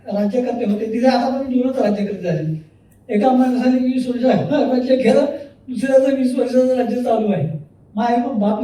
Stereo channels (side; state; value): both; identical; correlation 1.00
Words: राज्यकर्ते होते तिथे आतापर्यंत 2च राज्यकर्ते झाले. एका माणसाने 20 वर्ष राज्य केलं, दुसऱ्याचं 20 वर्षाचं राज्य चालू आहे. माय